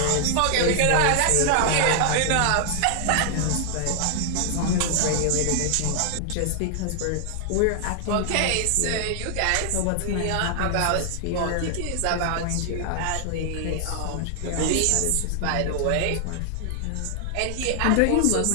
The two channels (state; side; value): different; both; correlation 0.00